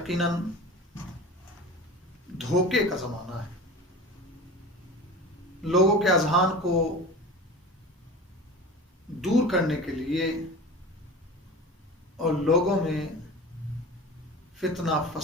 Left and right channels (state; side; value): normal; both; correlation 0.35